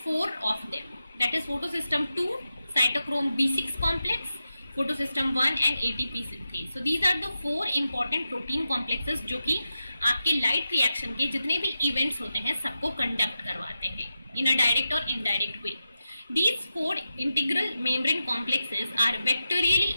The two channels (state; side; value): inverted; both; correlation -0.89